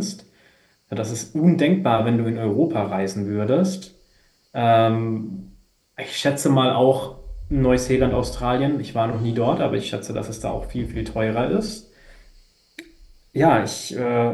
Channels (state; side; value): identical; both; correlation 1.00